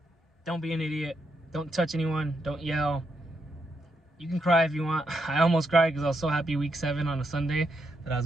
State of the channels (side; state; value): both; normal; correlation 0.80